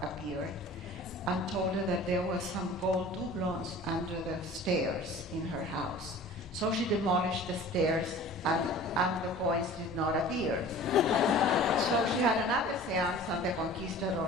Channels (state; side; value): normal; both; correlation 0.43